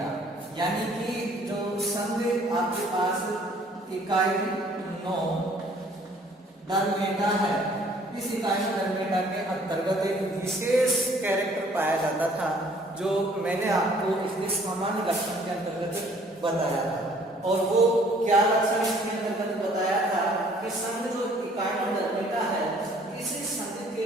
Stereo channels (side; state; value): both; normal; correlation 0.58